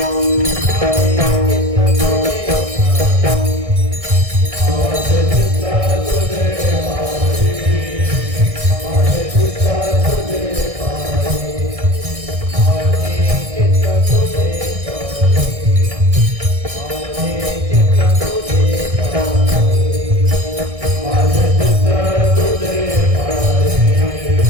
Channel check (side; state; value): left; late; 1.6 ms